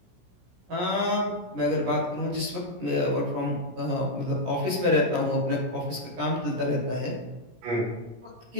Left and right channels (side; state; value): left; late; 17 ms